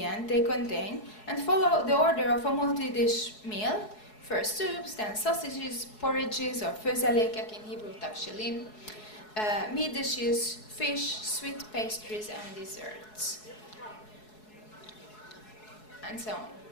they contain and follow the order of a multi-dish meal, first soups, then sausages, porridges or főzelékek, in Hebrew tavshilim, meat dishes, fish, sweet pastries and desserts, and so on.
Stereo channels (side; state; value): right; late; 4.7 ms